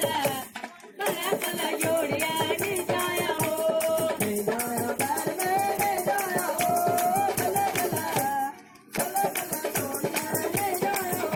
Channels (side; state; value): both; identical; correlation 1.00